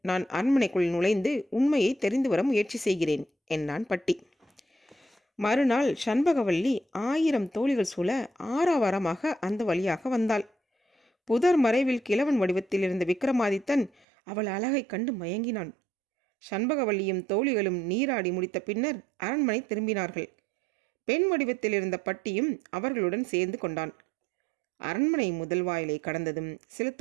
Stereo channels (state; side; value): drops out; left; at 13.9 s